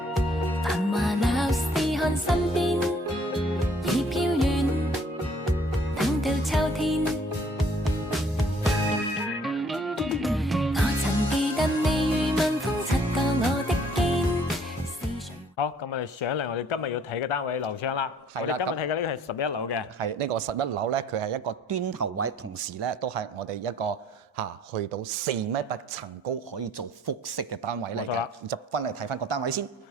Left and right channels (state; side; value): normal; both; correlation 0.59